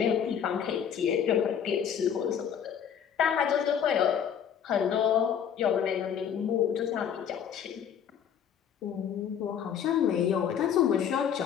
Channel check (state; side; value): quieter; right; 8.4 dB